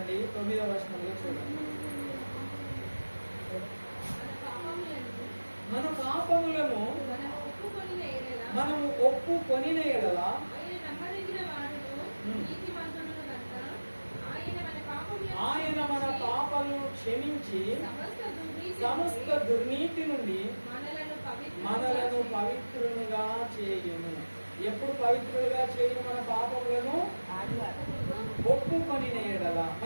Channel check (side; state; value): both; inverted; correlation -1.00